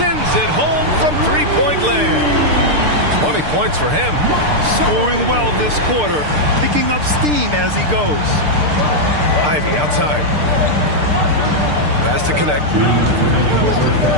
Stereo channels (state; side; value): late; left; 6.7 ms